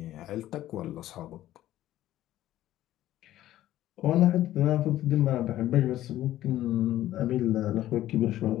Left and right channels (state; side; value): quieter; right; 13.9 dB